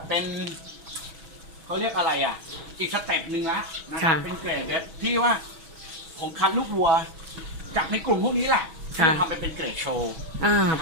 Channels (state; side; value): late; left; 6.1 ms